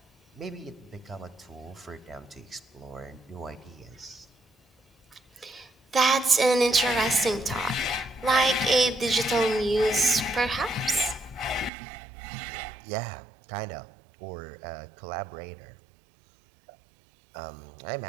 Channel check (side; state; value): left; drops out; at 11.7 s